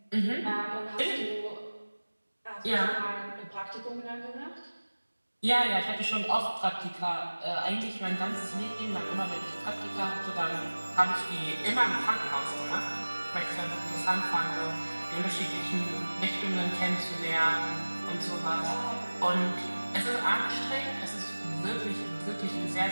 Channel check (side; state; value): both; inverted; correlation -1.00